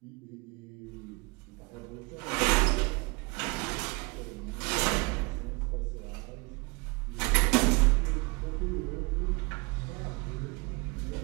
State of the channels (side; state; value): left; quieter; 27.7 dB